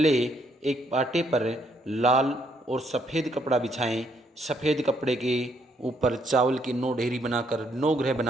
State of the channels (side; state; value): both; normal; correlation 0.71